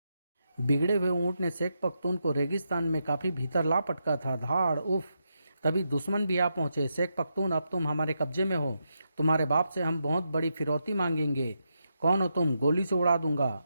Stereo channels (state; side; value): inverted; both; correlation -0.84